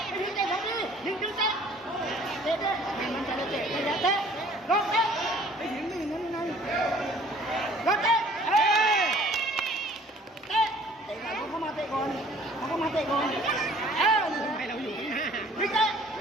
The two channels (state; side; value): normal; both; correlation 0.54